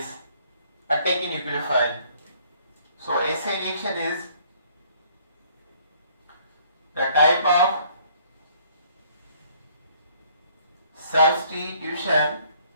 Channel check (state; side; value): inverted; both; correlation -0.61